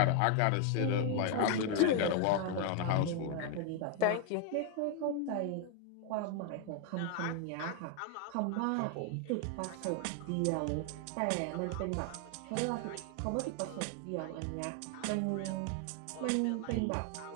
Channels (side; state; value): both; different; correlation 0.00